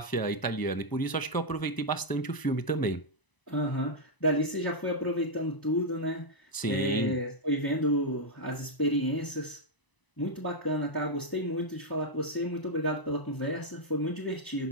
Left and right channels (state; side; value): late; right; 1.0 ms